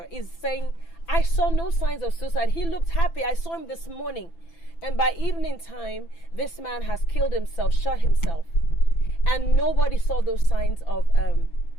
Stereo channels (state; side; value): late; right; 6.0 ms